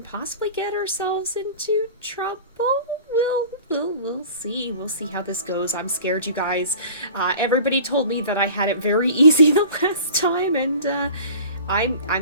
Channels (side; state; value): both; inverted; correlation -0.42